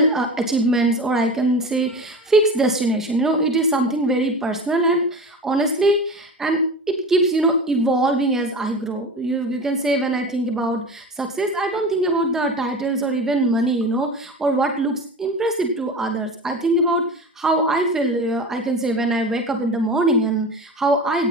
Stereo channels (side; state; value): both; normal; correlation 0.31